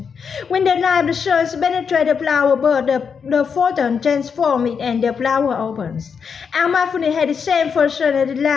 When the light of the sun penetrates the flower bud, the photon transforms it and the flower opens. Our mindfulness had the same function as the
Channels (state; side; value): quieter; right; 6.3 dB